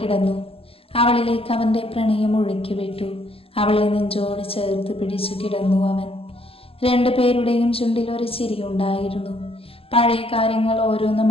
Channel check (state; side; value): late; right; 0.28 ms